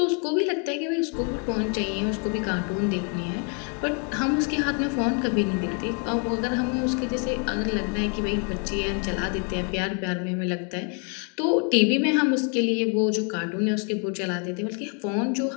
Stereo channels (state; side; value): quieter; right; 38.6 dB